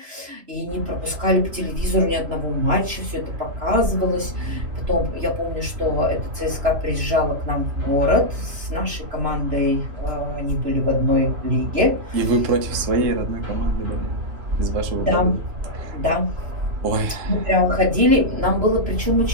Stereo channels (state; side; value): late; left; 3.0 ms